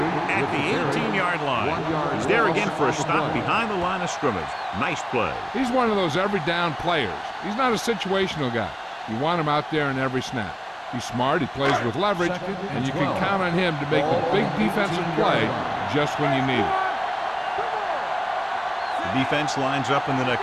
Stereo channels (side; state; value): both; identical; correlation 1.00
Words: at the 18-yard line. He's there again for a stop behind the line of scrimmage. Nice play. He's one of those every down players. He's not a situational guy. You want him out there in every snap. He's smart, he plays with leverage, and you can count on him to make a big defensive play just when you need it. The defense lines up in the